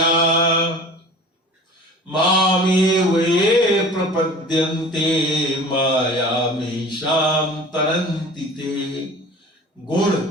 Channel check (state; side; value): normal; both; correlation 0.41